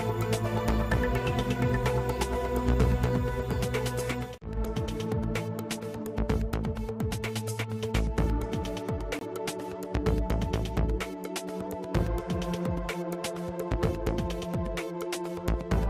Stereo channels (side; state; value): both; identical; correlation 1.00